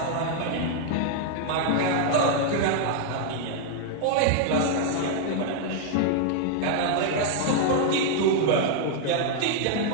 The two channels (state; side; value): different; both; correlation 0.00